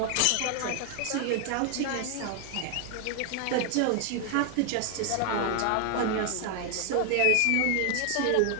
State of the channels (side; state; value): both; different; correlation 0.00